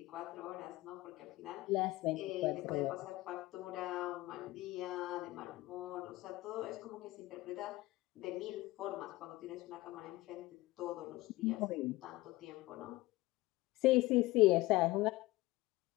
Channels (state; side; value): quieter; right; 19.3 dB